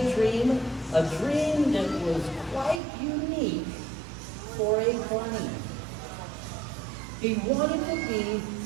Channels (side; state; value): left; drops out; at 2.8 s